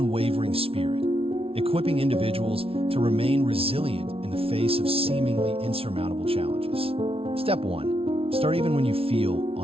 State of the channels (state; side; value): late; left; 0.27 ms